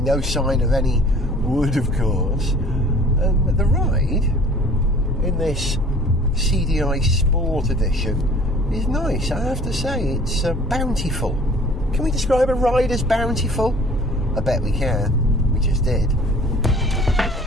no sign of any wood, of course. And the ride in this CDi Sport edition is nice, I have to say. It's bountiful. Can we describe a ride as bountiful? I bet we can. We just did.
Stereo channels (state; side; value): normal; both; correlation 0.50